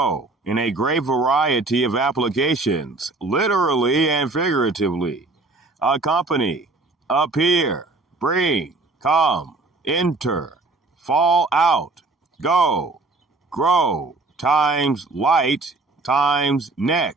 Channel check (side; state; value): left; quieter; 3.3 dB